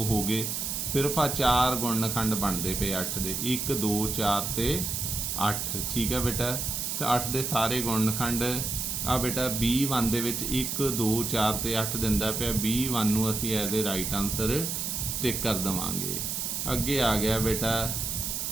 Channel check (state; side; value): noise; right; hiss, 2 dB below the sound